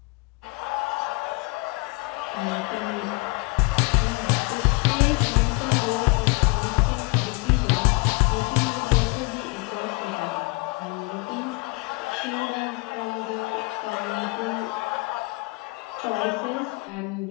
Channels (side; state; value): right; quieter; 27.3 dB